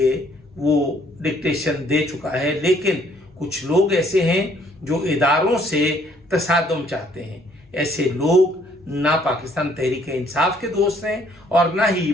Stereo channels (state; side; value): normal; both; correlation 0.63